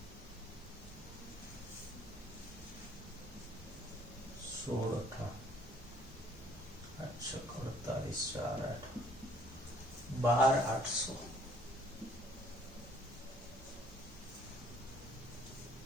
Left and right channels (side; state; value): both; normal; correlation 0.60